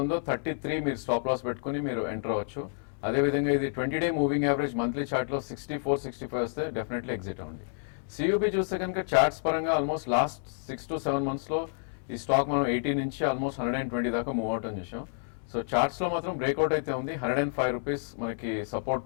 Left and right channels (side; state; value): right; silent; 58 dB below the other